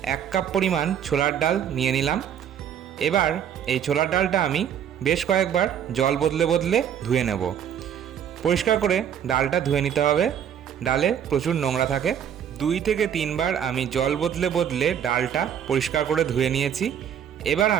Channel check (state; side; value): quieter; left; 9.0 dB